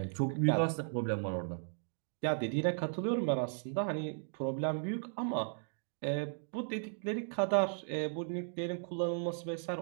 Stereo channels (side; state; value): left; silent; digital silence